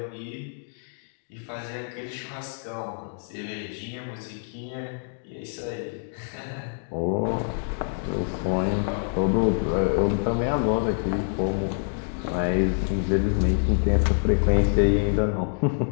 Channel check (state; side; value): silent; right; 61 dB below the other